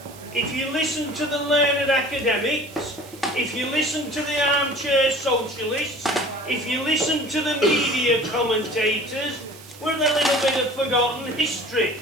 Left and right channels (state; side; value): noise; right; hiss, 20 dB below the sound